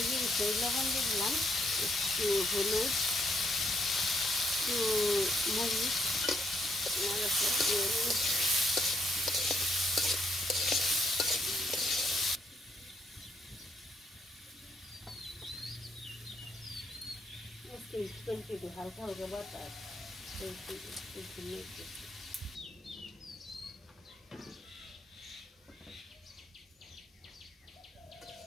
দিয়ে লবণ দিয়ে দিলাম, একটু হলুদ, একটু মরিচ, নাড়াচাড়া দিয়ে একটু হালকা হালকা বাতাস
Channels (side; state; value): both; normal; correlation 0.72